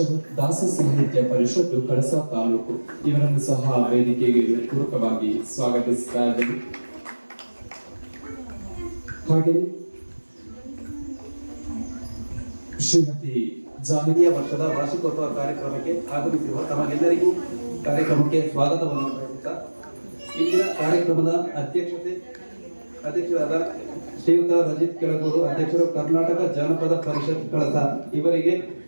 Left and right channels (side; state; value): both; inverted; correlation -1.00